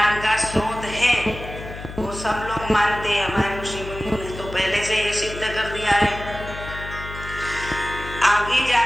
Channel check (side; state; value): left; noise; hum, 11 dB below the sound